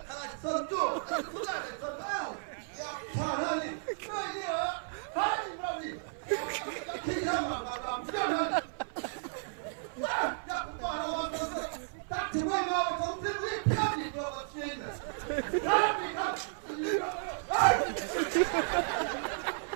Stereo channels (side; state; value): left; silent; 55 dB below the other